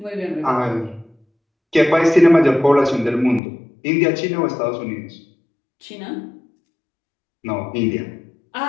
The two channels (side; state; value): right; drops out; at 3.4 s